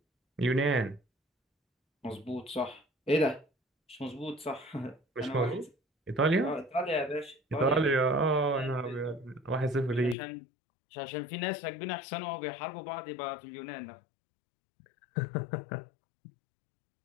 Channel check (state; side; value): drops out; right; at 10.2 s